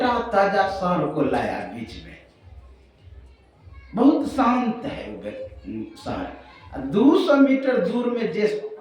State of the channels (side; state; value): both; identical; correlation 1.00